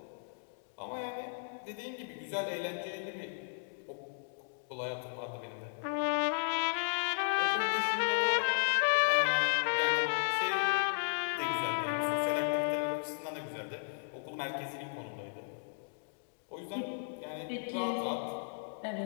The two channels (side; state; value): right; silent; digital silence